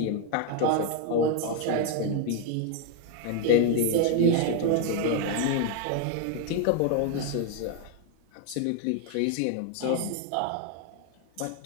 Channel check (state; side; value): different; both; correlation 0.01